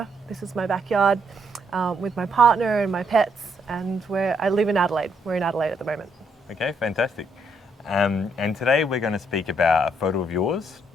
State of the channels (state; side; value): normal; both; correlation 0.74